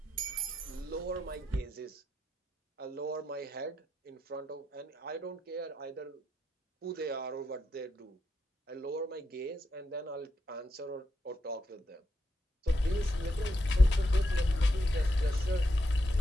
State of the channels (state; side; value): normal; both; correlation 0.82